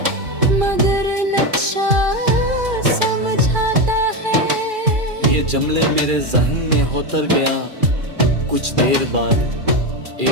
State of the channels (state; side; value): late; left; 2.4 ms